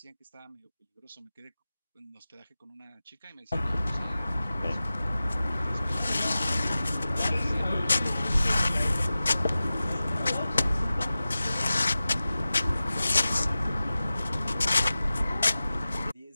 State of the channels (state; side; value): inverted; both; correlation -0.96